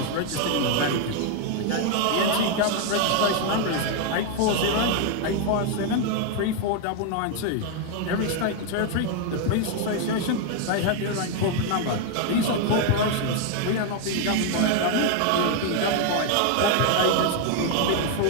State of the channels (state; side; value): different; both; correlation 0.01